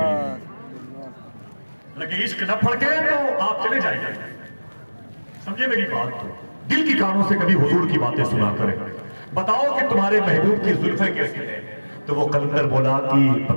لگے عشق نہ پھڑکے تو آپ چلے جائیں گے. سمجھے میری بات؟ دل کی کانوں سے کبھی حضور کی باتیں سنا کریں. بتاؤ کہ تمہارے محبوب کی زلفیں کیسی ہیں. تو وہ قلندر بولا کہ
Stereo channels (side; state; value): both; inverted; correlation -1.00